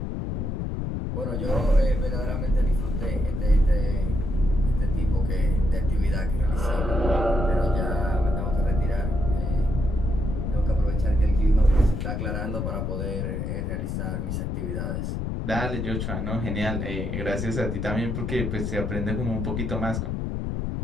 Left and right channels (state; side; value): noise; left; rumble, 2 dB below the sound